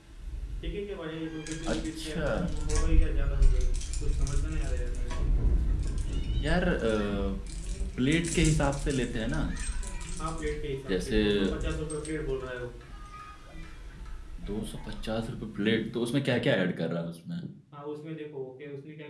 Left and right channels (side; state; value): both; identical; correlation 1.00